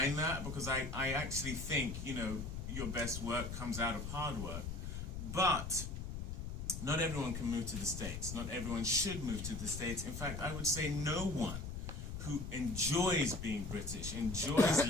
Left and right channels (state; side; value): noise; left; rumble, 6 dB below the sound